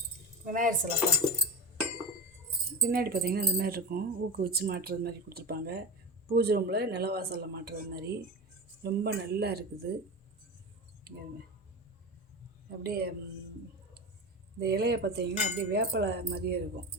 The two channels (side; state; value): both; normal; correlation 0.24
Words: விநாயகர் சிலைப்பா. பின்னாடி பார்த்தீங்கன்னா இந்த மாதிரி இருக்கும். ஊக்கு வச்சு மாட்டுறது மாதிரி கொடுத்துருப்பாங்க. பூஜை ரூமில் நிலவாசலில் மாட்டுறது மாதிரி ரொம்ப நல்லா இருக்குது. அப்படியே இந்த இலையை பார்த்தீங்கன்னா அப்படியே வேப்பலை மாதிரியே இருக்கும்.